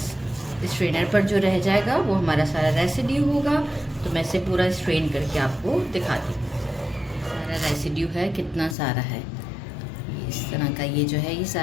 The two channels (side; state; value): right; drops out; at 8.8 s